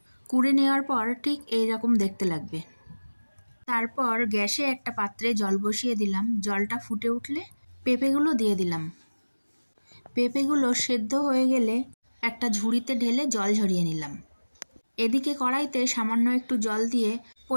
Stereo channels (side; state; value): both; inverted; correlation -1.00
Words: কুড়ে নেওয়ার পর ঠিক এই রকম দেখতে লাগবে। তারপর গ্যাসে একটা পাত্রে জল বসিয়ে দিলাম। জলটা ফুটে উঠলে পেঁপেগুলো দিয়ে দিলাম। পেঁপেগুলো সেদ্ধ হয়ে গেলে একটা ঝুড়িতে ঢেলে জল ঝরিয়ে নিলাম। এদিকে কড়াইতে সামান্য একটু জল দিয়ে